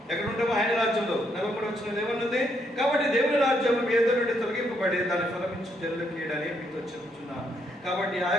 ఆయన రాజ్యంలో. 43వ వచనం ఏమన్నది? కాబట్టి దేవుని రాజ్యం మీ ఎదురు నుండి తొలగింపబడి దాన్ని ఫలమించు జనులకు ఇయ్యడని మీతో చెబుతున్నాను. కాబట్టి ఆ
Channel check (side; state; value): both; normal; correlation 0.75